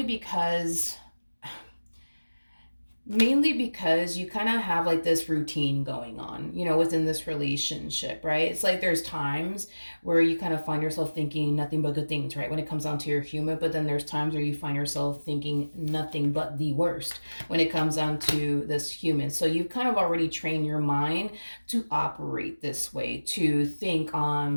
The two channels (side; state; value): both; inverted; correlation -1.00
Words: because you kind of have like this routine going on, within this relationship, right? It's like there's times where you kind of find yourself thinking nothing but good things, right? When it comes down to your human, but then there's times where you find yourself thinking nothing but the worst when it comes down to this human. So you've kind of already trained your mind to operate this way, to think